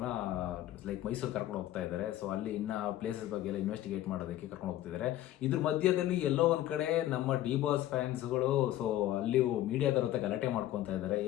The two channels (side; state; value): right; quieter; 13.7 dB